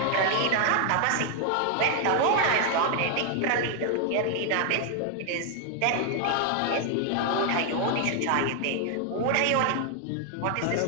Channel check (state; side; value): different; both; correlation 0.00